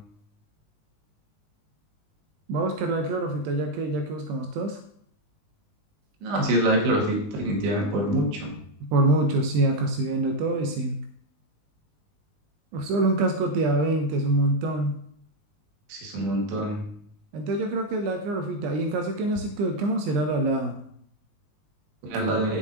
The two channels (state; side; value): late; left; 20 ms